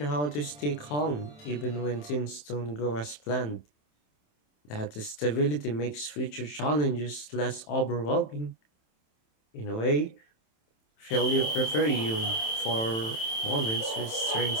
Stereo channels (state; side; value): late; right; 27 ms